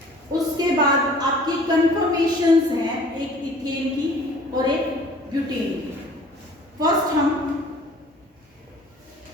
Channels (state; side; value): normal; both; correlation 0.50